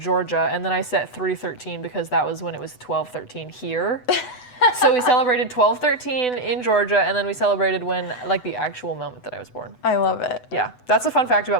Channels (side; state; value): right; late; 8.0 ms